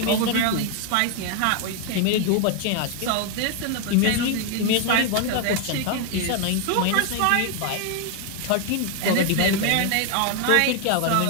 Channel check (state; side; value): different; both; correlation 0.01